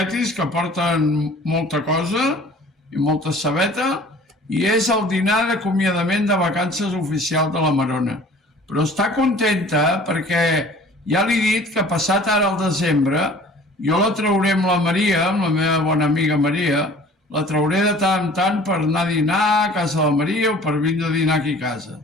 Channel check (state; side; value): normal; both; correlation 0.48